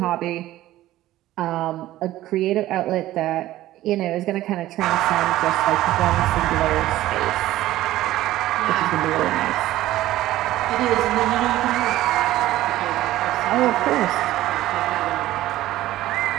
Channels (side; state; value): left; quieter; 15.1 dB